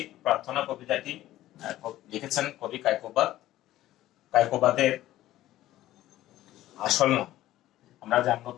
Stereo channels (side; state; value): right; quieter; 14.6 dB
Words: প্রার্থনা কবিতাটি লিখেছেন কবি কায়কোবাদ। কায়কোবাদের আসল নাম আমরা জানবো।